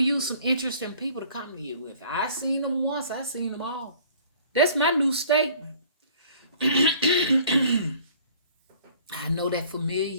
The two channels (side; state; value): both; inverted; correlation -0.53